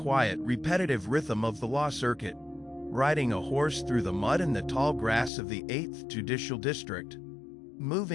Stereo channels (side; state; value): right; drops out; at 5.3 s